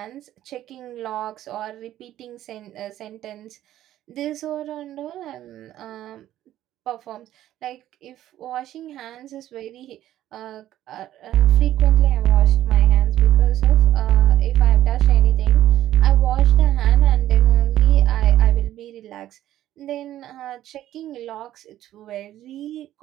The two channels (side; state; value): left; quieter; 13.0 dB